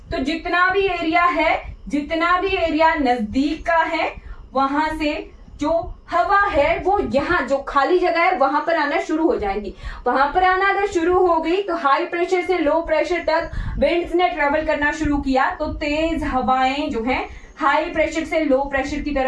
तो जितना भी एरिया है, जितना भी एरिया नजदीक का है, वहां से जो हवा है वो यहाँ जो खाली जगह है वहां पर आना शुरू हो जाएंगी। वहां पर आना अगर शुरू हो गई तो हाई प्रेशर से लो प्रेशर तक विंड्स ने ट्रेवल करना शुरू किया, तो तेज हवाएं जो है हाई प्रेशर से लो प्रेशर की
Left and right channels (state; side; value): identical; both; correlation 1.00